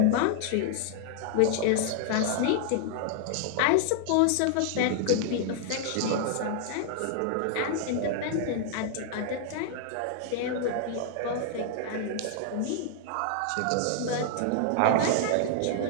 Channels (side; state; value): both; different; correlation 0.00